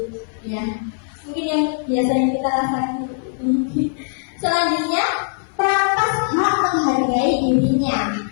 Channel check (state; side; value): silent; right; 56 dB below the other